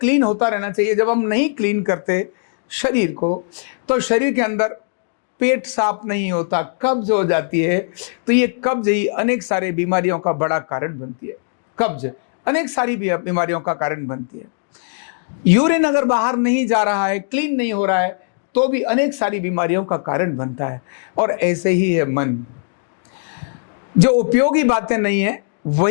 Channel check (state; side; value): silent; right; digital silence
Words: होता रहना चाहिए। जब हम नहीं क्लीन करते शरीर को, तो शरीर के अंदर पेट साफ नहीं होता, कब्ज हो जाती है, तो ये कब्ज ही अनेक सारे बीमारियों का बड़ा कारण बनती है। कब्ज अनेक सारी बीमारियों का कारण बनती है। यूरिन अगर बाहर नहीं जा रहा है, क्लीन नहीं हो रहा है, तो भी अनेक सारी बीमारियों का कारण बनता है। और ऐसे ही है मन। जो उपयोगी बातें नहीं है